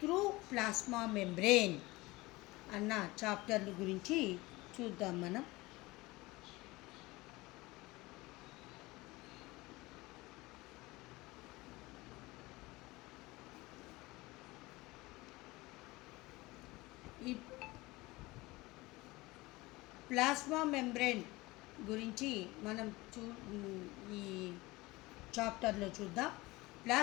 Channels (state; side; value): quieter; right; 21.2 dB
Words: through plasma membrane అన్న చాప్టర్ల గురించి చూద్దాం మనం. ఈ plasma membrane గురించి మనం ఈ చాప్టర్లో చూద్దాం.